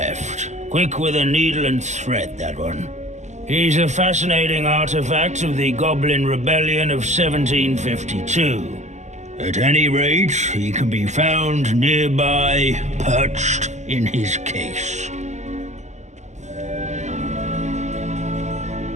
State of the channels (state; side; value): late; left; 0.34 ms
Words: Quick with a needle and thread, that one. He's a fascinating artifact of the Goblin Rebellion of 1752. At any rate, he can be found nearby, perched in his case.